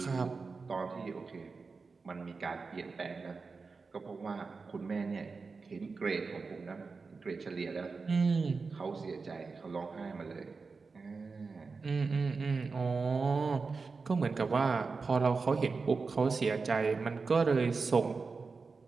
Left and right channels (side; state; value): left; quieter; 4.5 dB